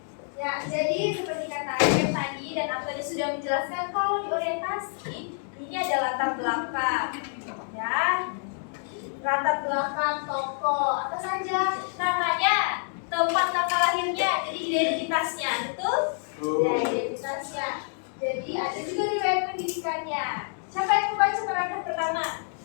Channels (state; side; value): silent; right; 60 dB below the other